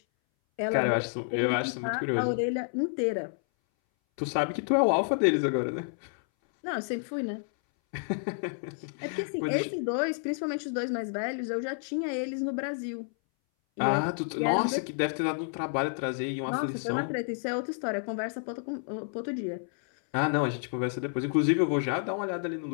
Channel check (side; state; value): right; silent; 58 dB below the other